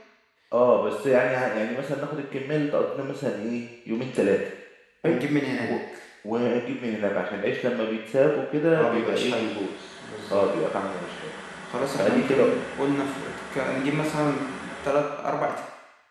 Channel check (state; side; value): identical; both; correlation 1.00